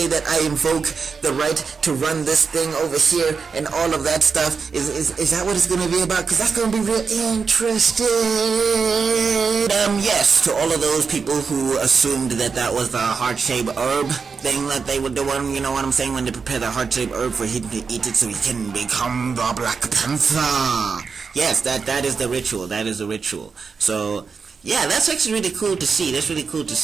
that I invoke the right to run this thing over here and all of that stuff? Is that what it's gonna be about? Because that's gonna be real interesting. Yes, to all of those people who assumed that was the heart-shaped herb thing that they were doing, you know what I'm saying, when they prepare the heart-shaped herb for him to eat it so he can become the Black Panther. Yes, that is the ritual. So yeah, that's actually really cool to see.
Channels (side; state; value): left; quieter; 5.4 dB